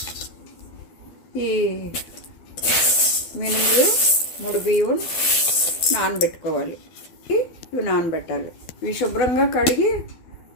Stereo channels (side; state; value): right; late; 12 ms